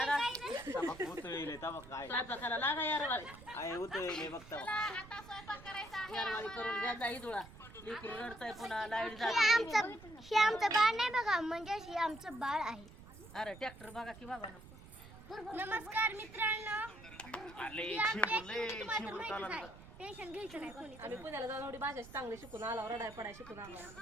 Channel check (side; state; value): right; noise; rumble, 18 dB below the sound